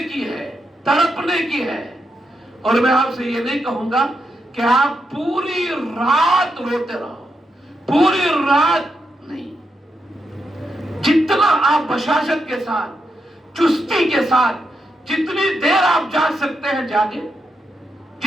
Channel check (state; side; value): normal; both; correlation 0.84